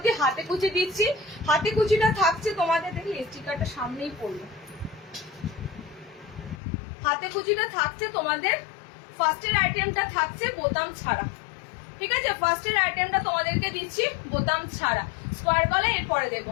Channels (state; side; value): drops out; right; at 6.6 s